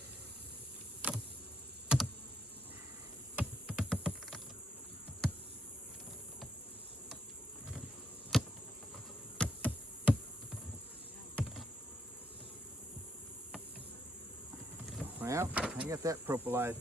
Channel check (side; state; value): both; normal; correlation 0.75